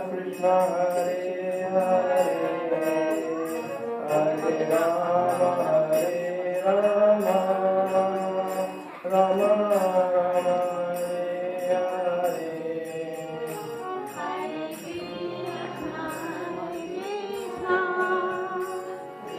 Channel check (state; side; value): identical; both; correlation 1.00